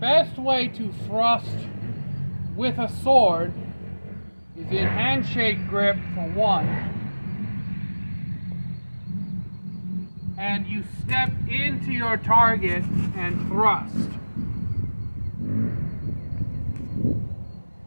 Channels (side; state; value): both; inverted; correlation -1.00